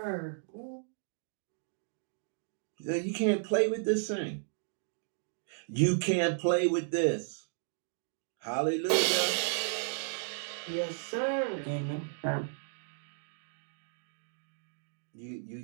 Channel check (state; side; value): silent; left; digital silence